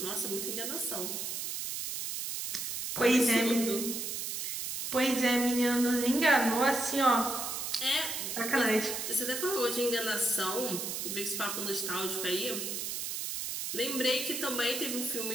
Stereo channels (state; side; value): noise; right; hiss, 4 dB below the sound